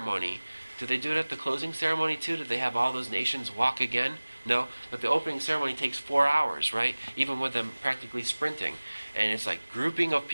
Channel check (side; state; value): both; inverted; correlation -1.00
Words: Do they do it at the closing ceremony too? Do they have all those nations walk again? No, but the opening ceremony takes 4 hours, right? Even with them practically sprinting. And it's like grouping of